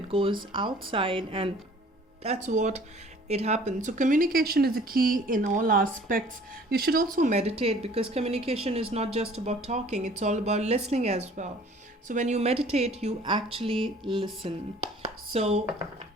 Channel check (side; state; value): both; normal; correlation 0.52